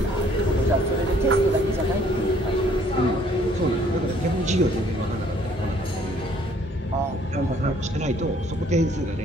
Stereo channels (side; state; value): both; normal; correlation 0.61